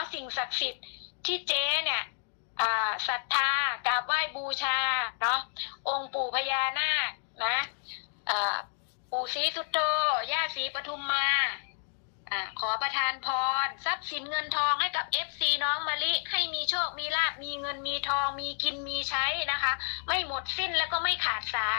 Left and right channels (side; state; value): right; silent; digital silence